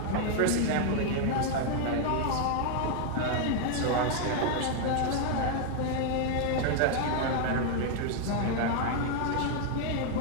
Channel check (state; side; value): different; both; correlation 0.00